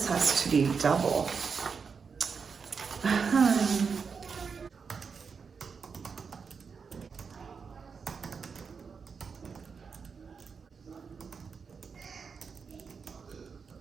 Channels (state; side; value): quieter; left; 5.7 dB